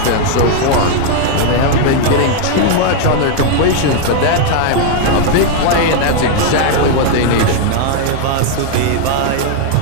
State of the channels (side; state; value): both; different; correlation 0.00